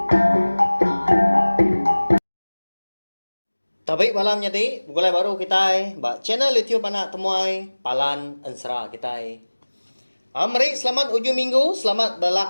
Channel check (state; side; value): inverted; both; correlation -1.00